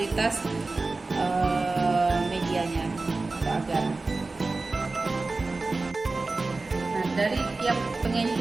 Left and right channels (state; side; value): quieter; left; 3.5 dB